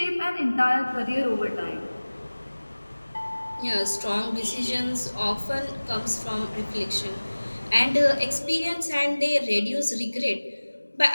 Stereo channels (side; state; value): both; inverted; correlation -1.00